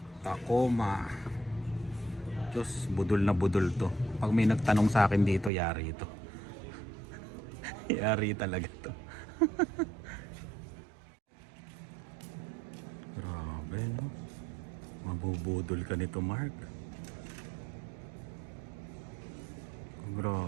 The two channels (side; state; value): left; drops out; at 5.5 s